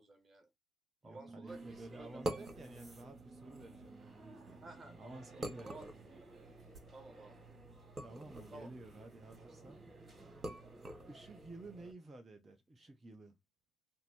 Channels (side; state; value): both; normal; correlation 0.86